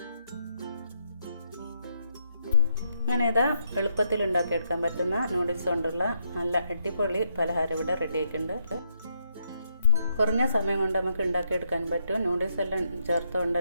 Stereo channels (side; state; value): both; inverted; correlation -0.76